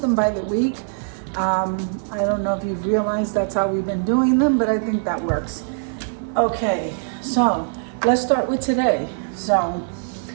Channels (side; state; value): left; silent; 57 dB below the other